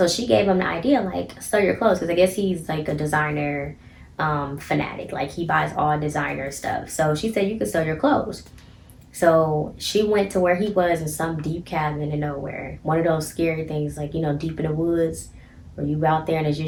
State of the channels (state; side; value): identical; both; correlation 1.00